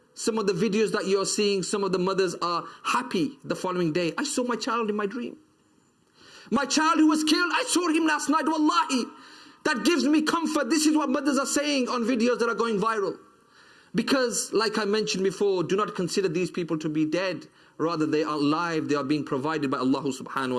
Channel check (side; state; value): both; identical; correlation 1.00